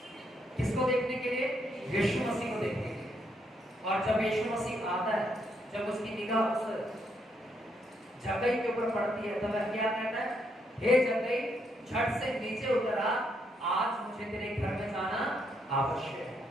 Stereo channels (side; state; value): both; normal; correlation 0.75